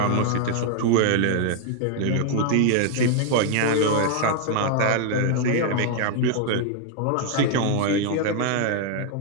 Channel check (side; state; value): both; different; correlation 0.00